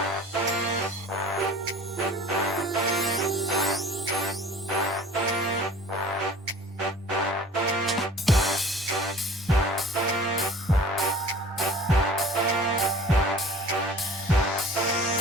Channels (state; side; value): normal; both; correlation 0.46